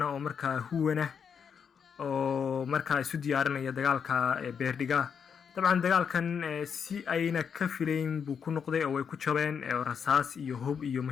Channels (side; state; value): right; quieter; 6.9 dB